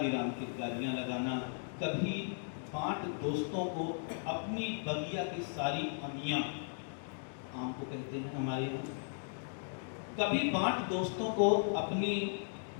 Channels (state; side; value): silent; right; digital silence